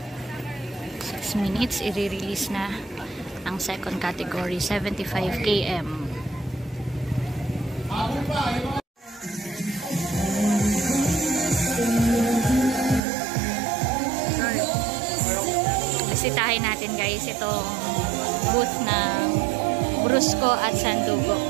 6 minutes, i-release na ang second category, 75 km. Bisitahin natin guys itong booth ng Brusco at Sandugo.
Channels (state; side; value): drops out; left; at 13.0 s